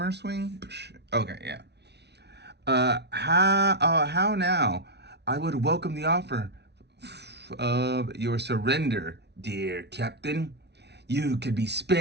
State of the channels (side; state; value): left; late; 0.49 ms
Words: swing? Okay, yeah. How now? I would welcome the offer of your surrender, dear Captain. You could be